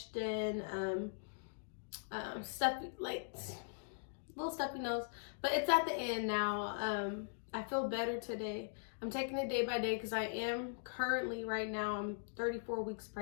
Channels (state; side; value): silent; right; digital silence